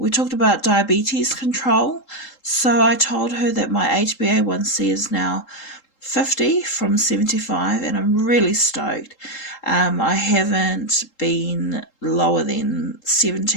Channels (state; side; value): late; right; 3.8 ms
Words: talked about diabetes control. So I told her that my HbA1c is now 50 from 75, and I'm really stoked. I haven't been lower than